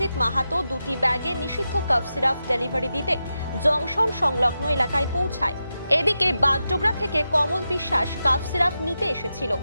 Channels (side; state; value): both; inverted; correlation -0.89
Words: মাহাতো দুটি ব্যাগে নিষিদ্ধ কাফ সিরাপ ডেলিভারি দিতে জংশন সংলগ্ন এলাকায় পৌঁছায়। এদিকে বাগডোগরা থেকে কমল বিশ্বাস কাফ সিরাপ নিতে এসেছিল।